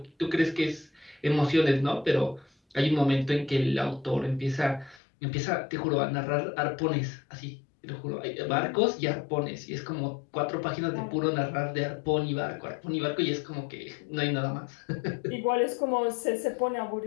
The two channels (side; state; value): right; drops out; at 5.0 s